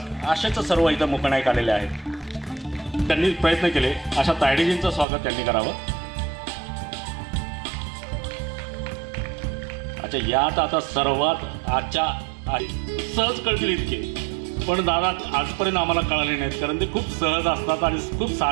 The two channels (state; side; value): drops out; left; at 5.1 s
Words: असेच सर्व इथं मूकनायक आलेले आहेत। त्यांनी प्रयत्न केले। अशा तायडीजींचं स्वागत त्यांनी करावं। अच्छा, यात आता सर्वात आजच्या सहज कळतील इतके, पण दादा आजपर्यंत आम्हाला कळाले नाहीत, कारण ते खूप सहज असतात आणि खूप